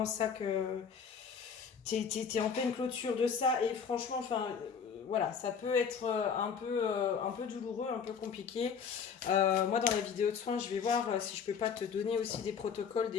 ça que. T'es en pleine clôture de ça. Et franchement, enfin. Voilà, ça peut être un peu douloureux, un peu compliqué. Moi, dans la vidéo de soins, je vais voir si je peux pas te donner aussi des protocoles,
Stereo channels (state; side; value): quieter; right; 6.5 dB